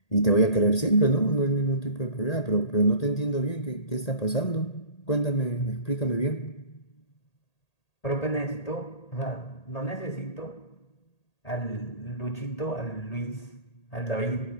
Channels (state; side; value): late; right; 1.8 ms